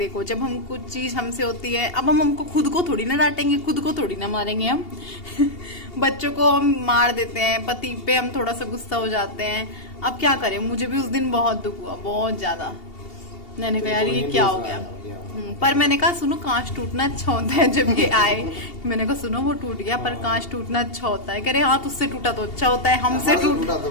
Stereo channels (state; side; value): late; right; 2.8 ms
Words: जब हम कुछ चीज हमसे होती है, अब हमको खुद को थोड़ी ना डांटेंगे, खुद को थोड़ी ना मारेंगे हम बच्चों को हम मार देते हैं, पति पे हम थोड़ा सा गुस्सा हो जाते हैं, अब क्या करें। मुझे भी उस दिन बहुत दुख हुआ, बहुत ज्यादा। मैंने कहा यार ये क्या हो गया, पर मैंने कहा सुनो कांच टूटना अच्छा होता है। जब ये आए मैंने कहा सुनो वो टूट गया पर कांच टूटना अच्छा होता है। कह रहे हाँ तुझसे टूटा तो अच्छा होता है, हमसे टूटा तो